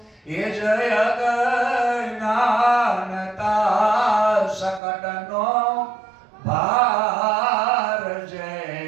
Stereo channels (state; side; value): drops out; left; at 4.8 s